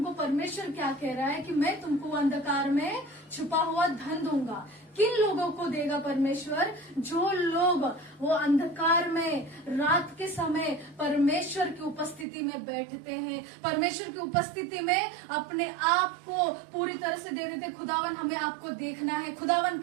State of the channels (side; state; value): left; drops out; at 12.2 s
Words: परमेश्वर क्या कह रहा है कि मैं तुमको अंधकार में छुपा हुआ धन दूंगा। किन लोगों को देगा परमेश्वर? जो लोग वो अंधकार में रात के समय परमेश्वर की उपस्थिति में बैठते हैं, परमेश्वर की उपस्थिति में अपने आप को पूरी तरह से दे देते। खुदावन हमें आपको देखना है, खुदावन